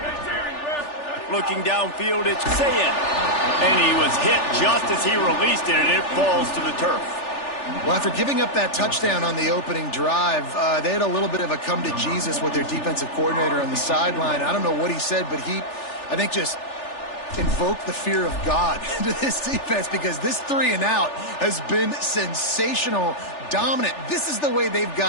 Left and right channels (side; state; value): right; late; 3.4 ms